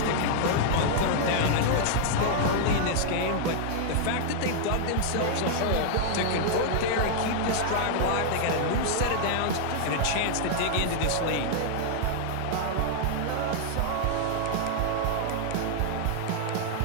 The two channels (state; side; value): different; both; correlation -0.01